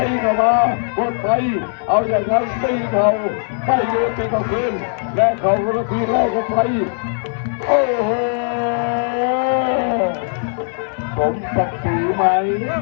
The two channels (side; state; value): right; silent; 61 dB below the other